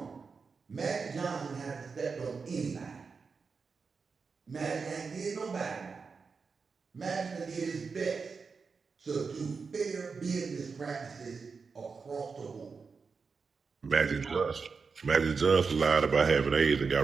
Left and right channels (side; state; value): left; quieter; 5.1 dB